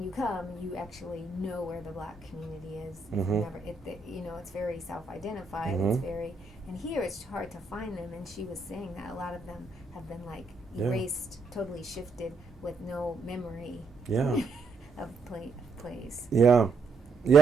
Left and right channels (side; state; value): left; quieter; 3.9 dB